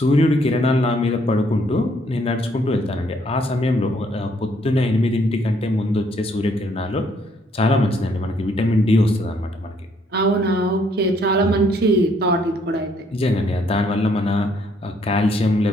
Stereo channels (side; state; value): both; normal; correlation 0.67